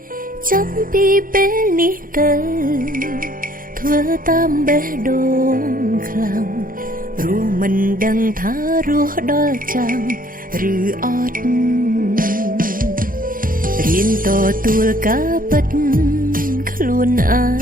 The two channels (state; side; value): late; left; 0.41 ms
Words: ចាប់ពីពេលនេះទៅធ្វើតាមបេះដូងខ្លាំងព្រោះមិនដឹងថារស់ដល់ចាំឬអត់រៀនតទួលការពិតខ្លួនឯ